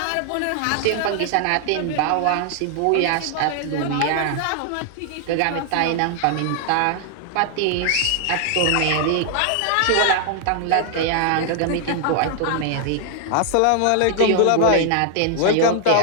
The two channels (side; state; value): both; different; correlation 0.00